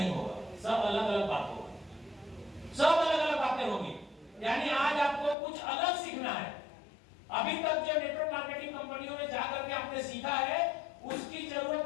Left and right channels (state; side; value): drops out; right; at 5.4 s